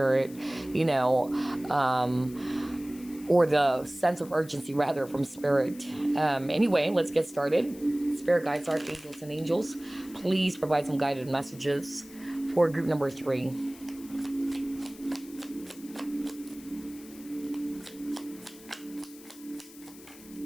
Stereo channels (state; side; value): noise; left; hiss, 20 dB below the sound